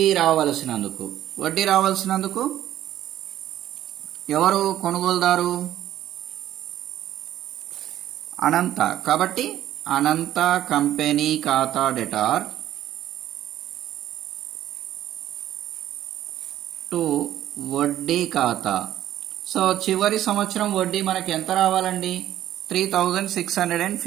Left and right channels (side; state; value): left; quieter; 12.5 dB